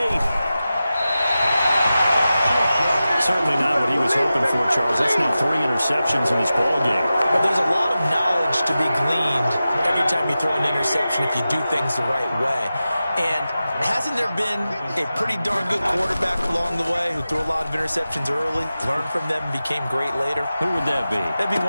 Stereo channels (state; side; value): inverted; both; correlation -0.94